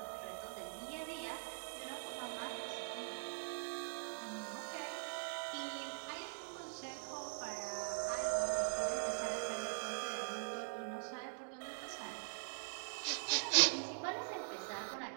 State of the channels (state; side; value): silent; left; digital silence